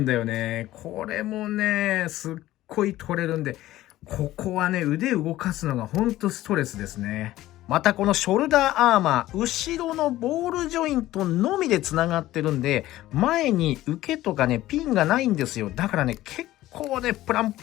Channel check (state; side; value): quieter; right; 15.5 dB